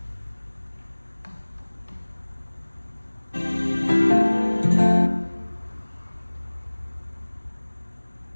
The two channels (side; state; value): both; inverted; correlation -1.00